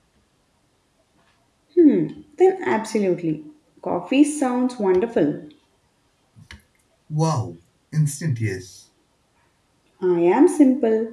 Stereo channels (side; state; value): both; identical; correlation 1.00